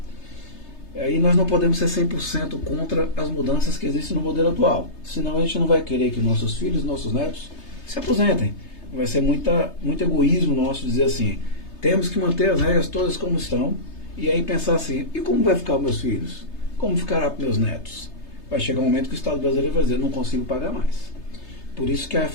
Aí nós não podemos ser 100% contra as mudanças que existem no modelo atual. Senão a gente não vai querer que nossos filhos, nossos netos se aposentem. Vai ser muito egoísmo nosso dizer assim, temos que manter as regras todas como estão, e aí pensar assim, e como vai ficar os meus filhos? Como ficará para meus netos? Vai chegar um momento que o Estado brasileiro vai dizer, não consigo pagar mais. Por isso que a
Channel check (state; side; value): late; right; 3.3 ms